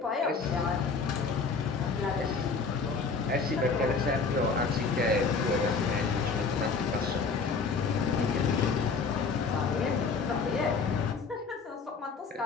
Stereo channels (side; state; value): right; quieter; 4.8 dB